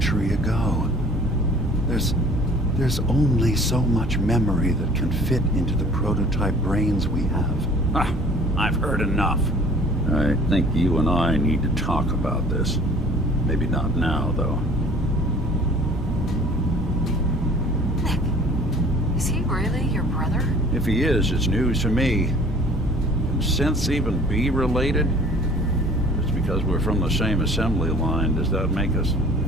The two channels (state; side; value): normal; both; correlation 0.50